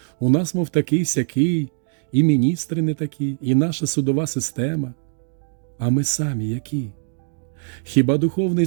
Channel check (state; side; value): silent; left; 57 dB below the other